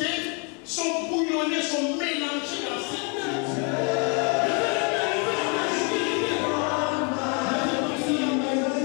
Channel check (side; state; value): right; quieter; 35.4 dB